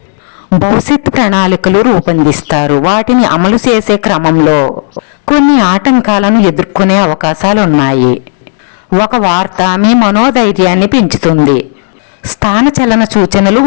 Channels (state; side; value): silent; right; digital silence